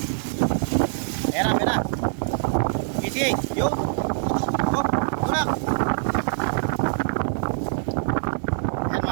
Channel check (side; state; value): left; silent; digital silence